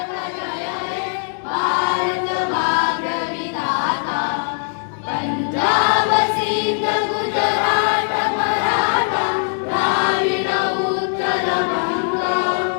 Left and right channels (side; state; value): right; silent; digital silence